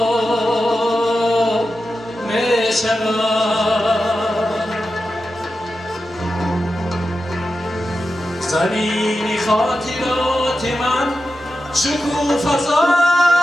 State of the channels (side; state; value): both; normal; correlation 0.90